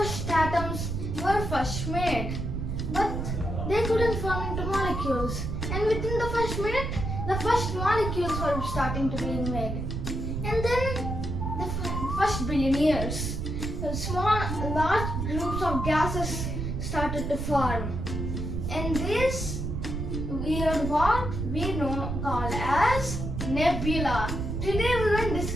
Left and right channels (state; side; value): noise; right; rumble, 3 dB below the sound